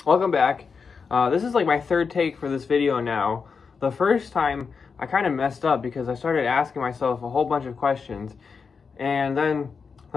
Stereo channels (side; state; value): right; quieter; 5.4 dB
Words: Welcome back. This is like my third take for this video now. The first time I kind of messed up because I started asking myself a whole bunch of questions, and then